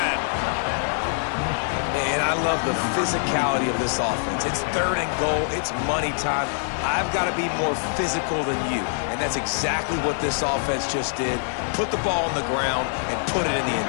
And I love the physicality of this offense. It's 3rd and goal. It's money time. I've got to be more physical than you. And that's exactly what this offense just did. Put the ball on the ground and put it in the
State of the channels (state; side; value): silent; right; 62 dB below the other